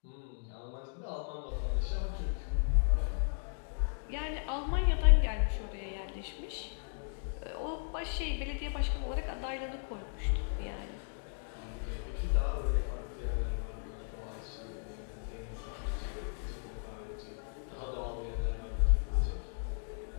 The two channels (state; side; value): silent; right; digital silence